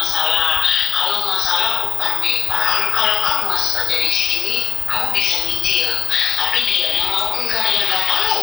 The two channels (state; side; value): quieter; right; 6.3 dB